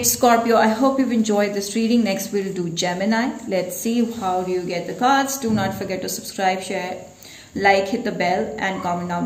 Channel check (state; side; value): identical; both; correlation 1.00